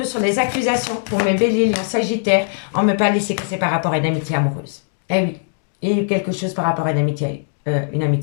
sur les accusations pour mes béliers, lions, sagittaires? On me parle ici que c'est par rapport à une amitié amoureuse. Eh oui, il y a eu quelque chose par rapport à une amitié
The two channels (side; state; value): right; silent; digital silence